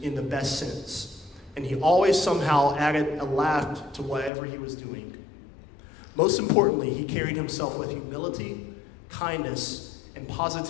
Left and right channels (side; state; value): right; drops out; at 4.3 s